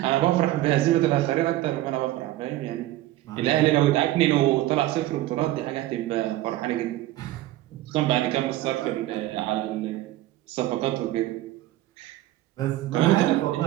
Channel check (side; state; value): left; quieter; 15.5 dB